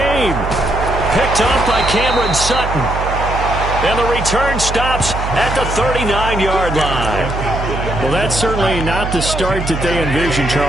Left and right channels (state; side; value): noise; right; hum, 5 dB below the sound